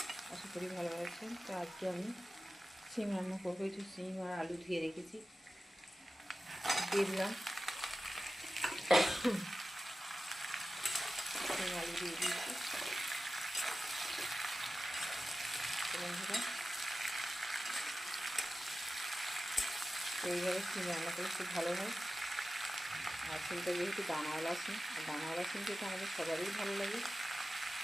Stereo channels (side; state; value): both; normal; correlation 0.94